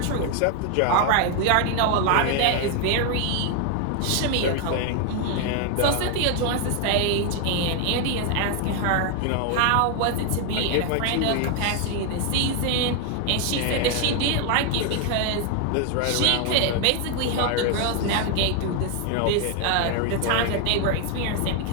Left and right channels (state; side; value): different; both; correlation 0.01